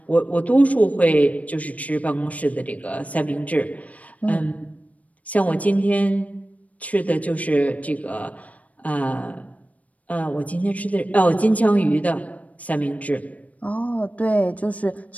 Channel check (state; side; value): late; right; 0.069 ms